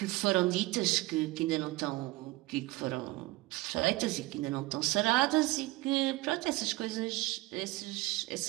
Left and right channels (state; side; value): quieter; left; 20.5 dB